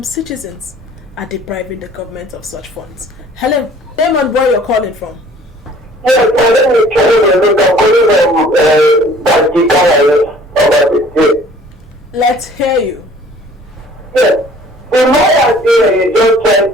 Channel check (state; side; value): normal; both; correlation 0.52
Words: citizens are depriving the government of such funds. Helen, Damon, where you're calling from? Yes, let me tell you, I'm calling from Let's hear you. Yes. The lawyer here is just trying